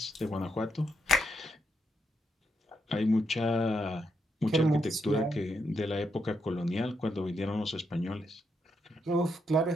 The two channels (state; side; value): normal; both; correlation 0.80